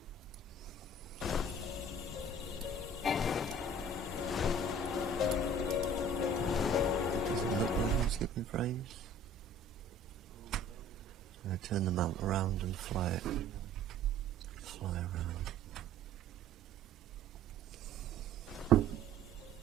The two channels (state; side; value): normal; both; correlation 0.49